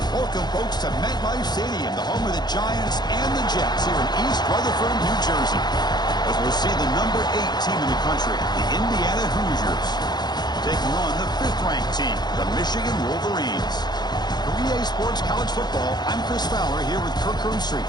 Welcome, folks, to MetLife Stadium, the home of the Giants and the Jets here in East Rutherford, New Jersey, as we'll see the number 8 team in the country, the Indiana Hoosiers, taking on the 5th-ranked team, the Michigan Wolverines. For EA Sports College Football, I'm Chris Fowler here with Kirk Herbstreit.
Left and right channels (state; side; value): late; right; 0.20 ms